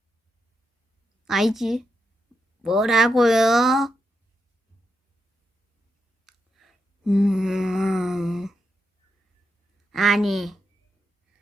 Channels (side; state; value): both; normal; correlation 0.85